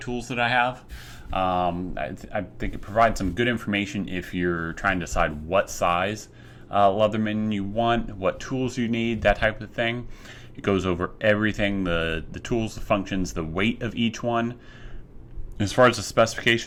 that I have. I think it provides some good information if you're trying to decide what size Leatherman you want, what tools you need, that type of thing. It goes over everything, the tools, the functions, the weight of each one. As far as the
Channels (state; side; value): identical; both; correlation 1.00